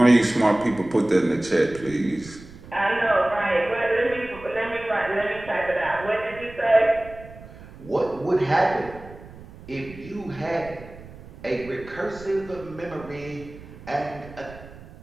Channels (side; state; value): right; noise; rumble, 18 dB below the sound